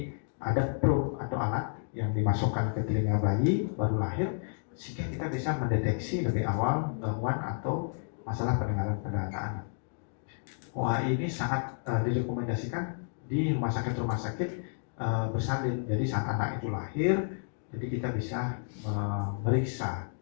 ada probe atau alat yang dimasukkan ke telinga bayi baru lahir sehingga kita bisa mendeteksi lebih awal gangguan atau masalah pendengaran pada anak-anak. OAE ini sangat direkomendasikan di rumah sakit bersalin. Jadi saat anak itu lahir, jadi kita bisa memeriksa.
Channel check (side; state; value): right; silent; digital silence